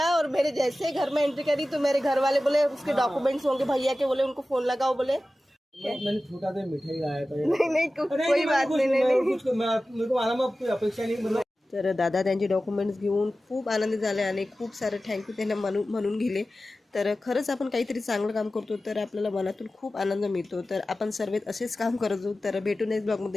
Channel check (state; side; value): normal; both; correlation 0.95